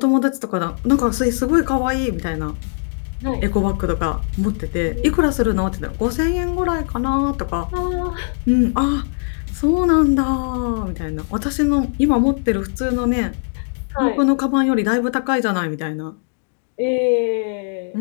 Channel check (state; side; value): silent; right; digital silence